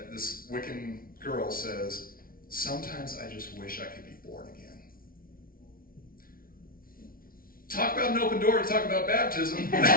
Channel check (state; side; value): late; right; 0.42 ms